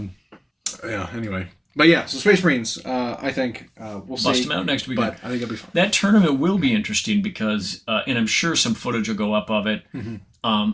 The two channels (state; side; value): identical; both; correlation 1.00